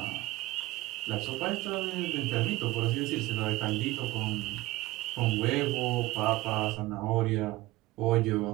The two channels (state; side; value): quieter; left; 18.9 dB